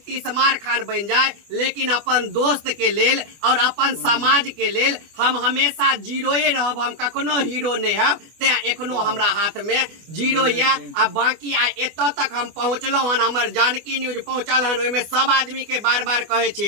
तीसमार खान बन जाए, लेकिन अपन दोस्त के लेल और अपन समाज के लेल हम हमेशा जीरोए रहब। हम कखनो हीरो नहीं हब। ते एखनो हमरा हाथ में जीरो या। अब बाकी आइ एत तक हम पहुँचलहुँ हन, हमर जानकी न्यूज पहुँचल हन। ओहिमे सब आदमी के बार बार कहे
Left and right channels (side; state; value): left; late; 24 ms